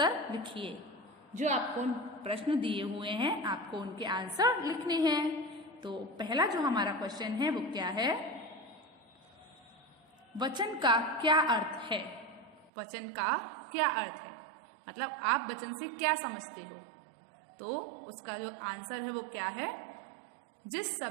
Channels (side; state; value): left; drops out; at 12.7 s